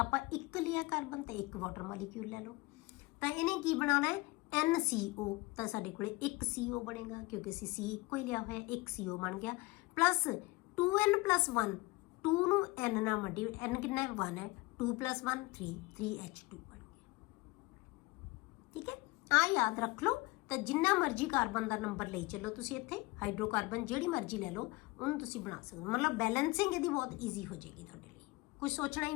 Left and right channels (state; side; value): quieter; right; 23.2 dB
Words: ਆਪਾਂ ਇੱਕ ਲਿਆ ਕਾਰਬਨ ਤੇ ਇੱਕ ਵਾਟਰ ਮੋਲੀਕਿਊਲ ਲੈ ਲਓ, ਤਾਂ ਇਹਨੇ ਕੀ ਬਣਾਉਣਾ ਹੈ NCO, ਤਾਂ ਸਾਡੇ ਕੋਲੇ ਇੱਕ CO ਬਣੇਗਾ, ਕਿਉਂਕਿ ਅਸੀਂ C ਇੱਕੋ ਹੀ ਲਿਆ ਹੋਇਆ, ਇੱਕ CO ਬਣ ਗਿਆ, ਪਲੱਸ 2n+1, 2 ਨੂੰ N ਨਾਲ ਮਲਟੀ, N ਕਿੰਨਾ ਹੈ 1 ਹੈ, 2 + 1 3, 3H2 ਬਣ ਗਿਆ, ਠੀਕ ਹੈ। ਆ ਯਾਦ ਰੱਖ ਲਓ। ਤਾਂ ਜਿੰਨਾ ਮਰਜ਼ੀ ਕਾਰਬਨ ਦਾ ਨੰਬਰ ਲਈ ਚੱਲੋ ਤੁਸੀਂ, ਇੱਥੇ ਹਾਈਡਰੋਕਾਰਬਨ ਜਿਹੜੀ ਮਰਜ਼ੀ ਲੈ ਲਓ ਉਹਨੂੰ ਤੁਸੀਂ ਬਣਾ ਸਕਦੇ ਹੋ, ਮਤਲਬ ਬੈਲੈਂਸਿੰਗ ਇਹਦੀ ਬਹੁਤ ਈਜ਼ੀ ਹੋ ਜਾਏਗੀ ਤੁਹਾਡੇ ਲਈ, ਕੁਝ ਸੋਚਣਾ ਹੀ